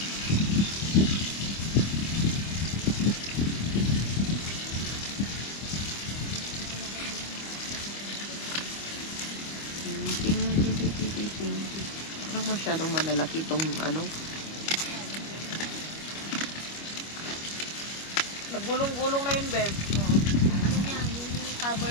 Parang masyadong malalaki itong ano. Naggulong-gulong na yun, babe. Yung cover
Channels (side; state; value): right; late; 25 ms